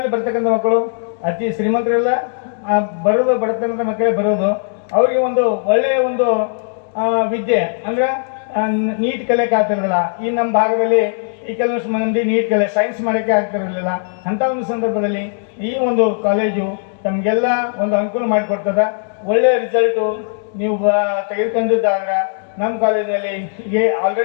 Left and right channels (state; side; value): silent; right; digital silence